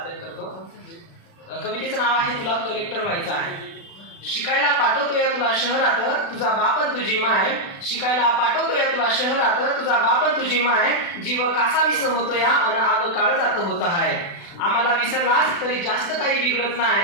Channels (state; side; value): late; right; 36 ms